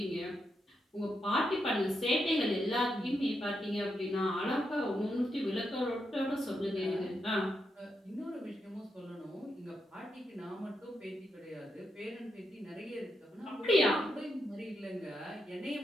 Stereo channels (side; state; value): both; normal; correlation 0.83